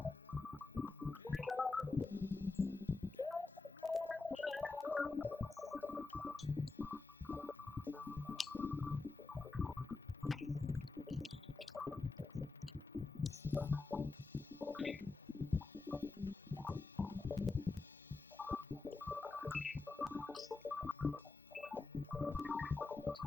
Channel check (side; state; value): right; quieter; 3.8 dB